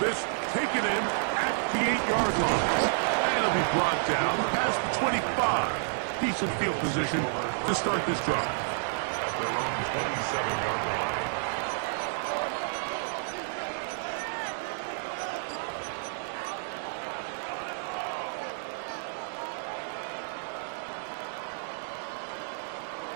taken in at the 8-yard line. And it'll be brought down past the 25. Decent field position to start this drive. At their own 27-yard line.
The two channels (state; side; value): silent; left; digital silence